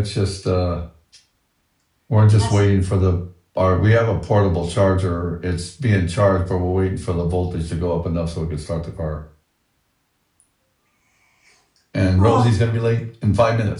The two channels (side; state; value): both; identical; correlation 1.00